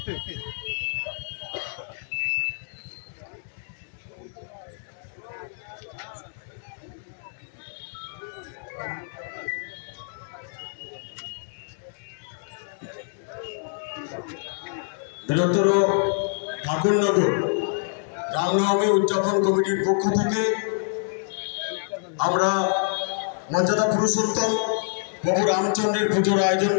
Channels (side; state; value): right; silent; digital silence